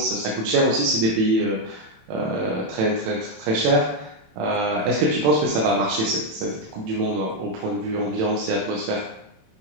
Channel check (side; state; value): left; late; 27 ms